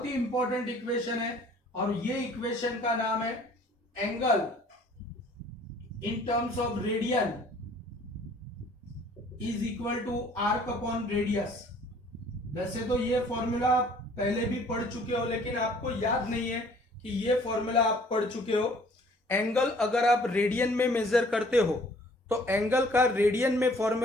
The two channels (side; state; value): both; normal; correlation 0.55